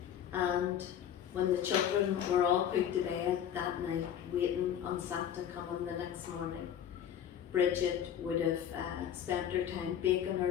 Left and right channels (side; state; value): right; quieter; 9.5 dB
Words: And when the children were all put to bed that night, waiting on Santa coming the next morning, Bridget would have spent her time baking